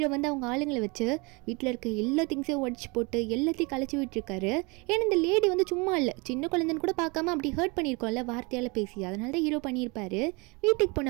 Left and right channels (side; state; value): left; quieter; 28.4 dB